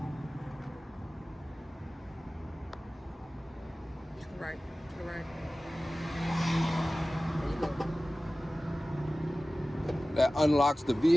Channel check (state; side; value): normal; both; correlation 0.97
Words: Right, right. There you go. That unlocks the